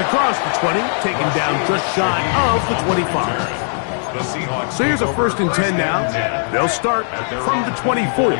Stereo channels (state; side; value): silent; right; 58 dB below the other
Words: across the 20, taken down just shy of the 25. So here's a 1st and 10 now. They'll start from the 24.